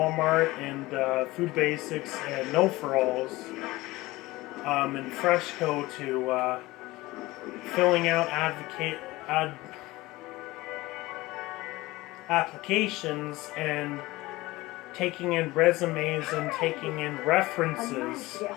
and Food Basics and No For Alls and Freshco to filling out applications and taking in resumes and taking in references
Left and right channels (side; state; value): right; quieter; 19.6 dB